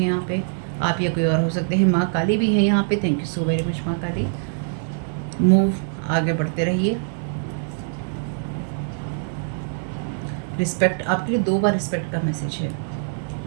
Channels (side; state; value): left; silent; digital silence